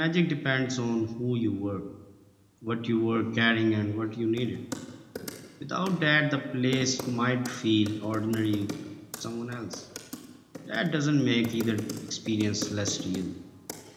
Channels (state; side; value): identical; both; correlation 1.00